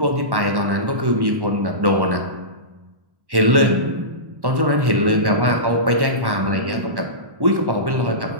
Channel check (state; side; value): late; left; 1.1 ms